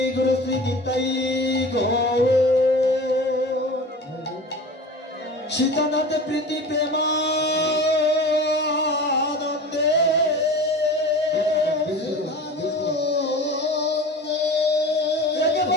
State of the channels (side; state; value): both; normal; correlation 0.36